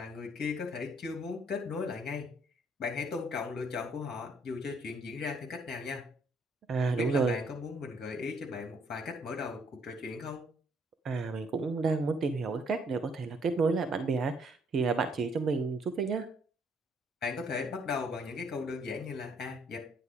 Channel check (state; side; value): normal; both; correlation 0.66